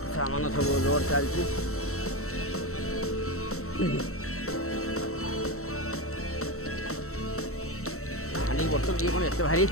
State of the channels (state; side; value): late; right; 0.64 ms